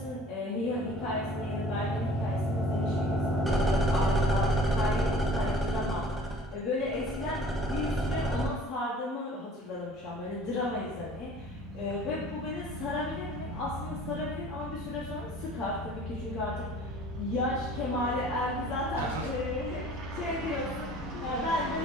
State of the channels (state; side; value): normal; both; correlation 0.49